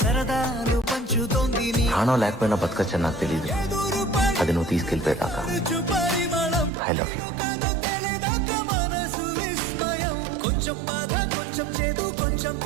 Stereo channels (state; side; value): drops out; left; at 6.7 s